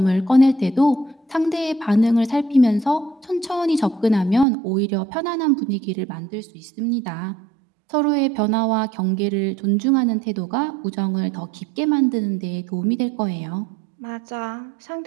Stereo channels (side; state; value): left; drops out; at 4.5 s